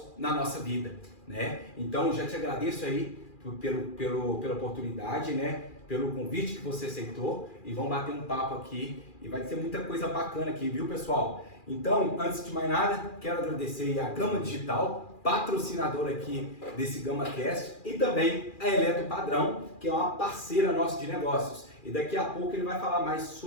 na nossa vida, né? Então já te agradeço aí pela oportunidade, né? Pelo convite que você aceitou e vamos bater um papo aqui e vai ser muita coisa bacana aqui, viu, pessoal? Então, antes de mais nada, quero agradecer a Gama Digital, patrocinadora aqui desse GamaCast, e também a Eletro Padrão, que é uma parceira nossa de negócios. E daqui a pouco ele vai falar mais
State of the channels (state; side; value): late; right; 2.4 ms